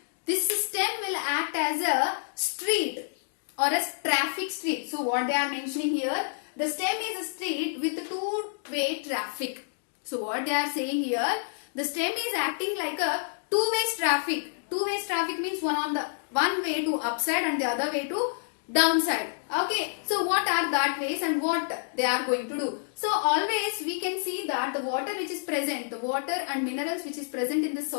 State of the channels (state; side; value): silent; right; digital silence